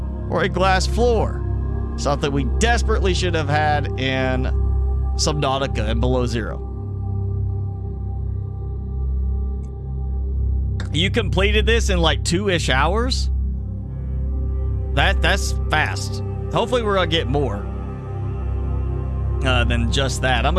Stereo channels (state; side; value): identical; both; correlation 1.00